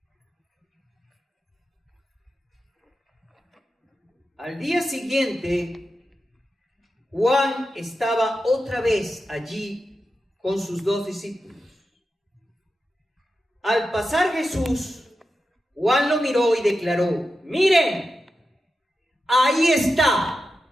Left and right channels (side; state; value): both; normal; correlation 0.90